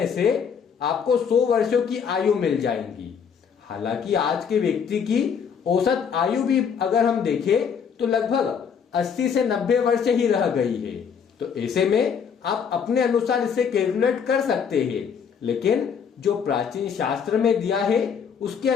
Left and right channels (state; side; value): quieter; right; 6.9 dB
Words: से आपको 100 वर्षों की आयु मिल जाएंगी। हालांकि आज के व्यक्ति की औसत आयु भी अगर हम देखें तो लगभग 80 से 90 वर्ष ही रह गई है। तो ऐसे में आप अपने अनुसार इसे कैलकुलेट कर सकते हैं, लेकिन जो प्राचीन शास्त्र में दिया है उसके